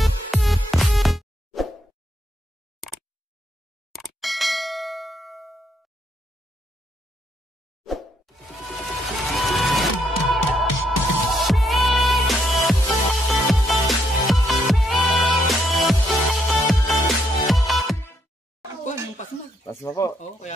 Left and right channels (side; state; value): both; normal; correlation 0.75